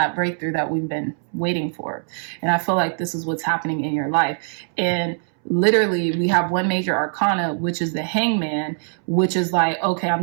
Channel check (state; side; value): silent; left; 64 dB below the other